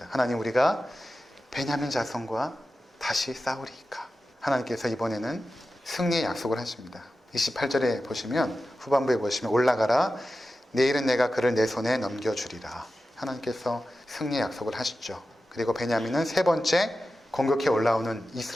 하나님, 우리가 베냐민 자손과 다시 싸우리이까? 하나님께서 이번에는 승리의 약속을 하십니다. 28절에 보시면, 후반부에 보시면, 올라가라, 내일은 내가 그를 내 손에 넘겨주리라. 하나님께서 승리의 약속을 하시죠. 그리고 베냐민은 세 번째 공격해 올라오는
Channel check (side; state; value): both; normal; correlation 0.93